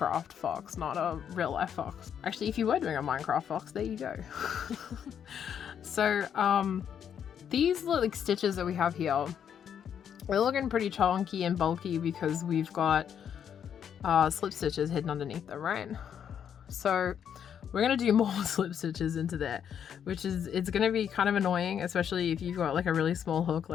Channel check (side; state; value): right; quieter; 8.5 dB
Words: fox, not a real life fox. Actually, if you were doing a Minecraft fox, there you go. So these like stitches that we have here, they're looking pretty chunky and bulky because we've got slip stitches hidden underneath them, right? So we're going to do more slip stitches into there, which is, it's going to be kind of annoying, especially if you've got like a really small hook